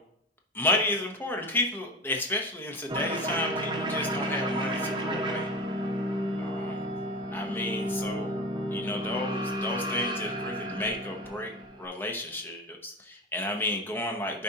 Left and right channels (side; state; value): both; normal; correlation 0.28